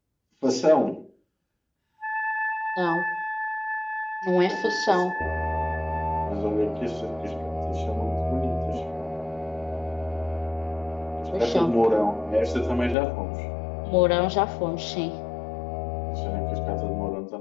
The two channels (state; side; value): drops out; right; at 13.0 s